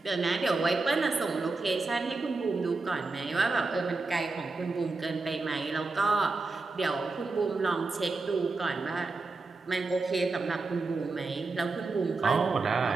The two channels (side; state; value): left; quieter; 3.7 dB